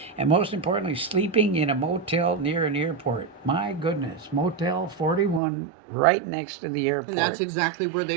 And most importantly, sleeping in a motel near an airport. My goodness, Motel 41 right next to the airport. And that's exactly where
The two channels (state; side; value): drops out; left; at 5.4 s